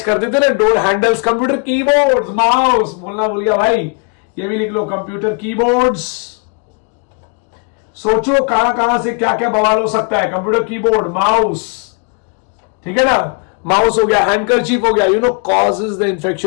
कर देते ना, door handles. Computer keyboard, mouse, बोलना भूल गया भाई, ये भी लिख लो. Computer keyboards. सोचो कहां कहां से क्या क्या बवाल हो सकता है. कंप्यूटर कीबोर्ड, माउस, ठीक है ना, माउस हो गया, हैंडकरचीफ हो गया. You know, causes the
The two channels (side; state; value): right; quieter; 36.6 dB